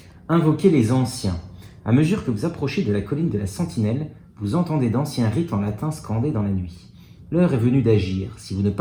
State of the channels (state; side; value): identical; both; correlation 1.00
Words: invoquez les anciens. À mesure que vous approchez de la colline de la Sentinelle, vous entendez d'anciens rites en latin scandés dans la nuit. L'heure est venue d'agir. Si vous ne